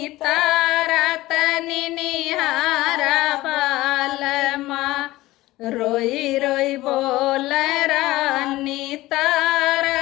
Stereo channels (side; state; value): right; quieter; 17.8 dB